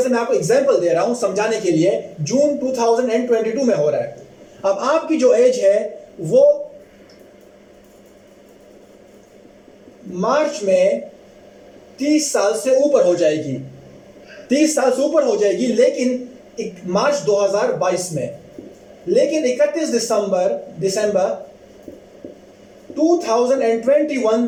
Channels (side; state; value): both; identical; correlation 1.00